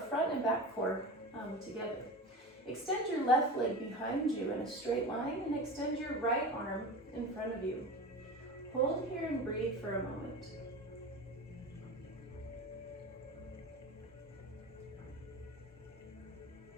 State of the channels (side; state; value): both; normal; correlation 0.30